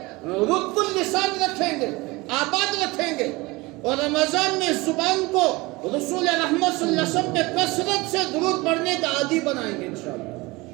رطب اللسان رکھیں گے، آباد رکھیں گے، اور رمضان میں زبان کو رسول رحمت صلی اللہ علیہ وسلم پہ کثرت سے درود پڑھنے کا عادی بنائیں گے انشاءاللہ۔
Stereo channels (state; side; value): quieter; left; 22.7 dB